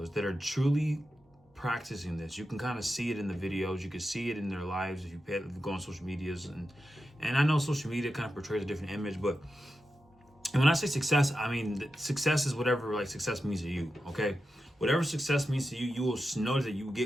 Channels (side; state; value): both; normal; correlation 0.90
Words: that are truly practicing this. You can kind of see it in the videos. You can see it in their lives if you go on social medias. And I know social media kind of portrays a different image, but when I say success, I mean success is whatever like success means to you, okay? Whatever success means to you, you will notice that you will